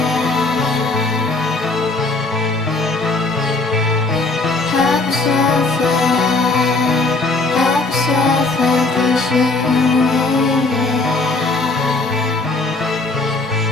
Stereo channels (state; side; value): quieter; right; 3.4 dB